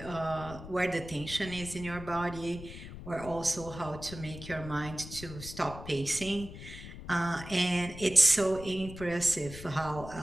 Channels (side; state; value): left; noise; rumble, 12 dB below the sound